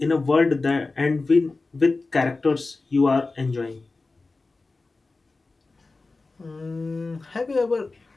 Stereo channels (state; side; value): quieter; right; 3.6 dB